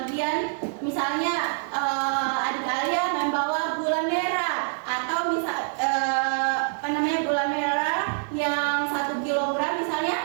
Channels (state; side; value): silent; left; digital silence